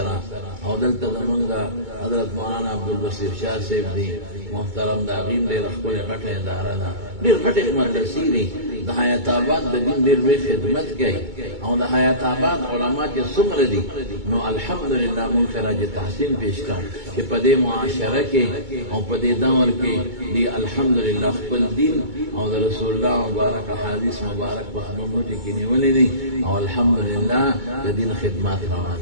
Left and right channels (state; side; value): late; left; 2.2 ms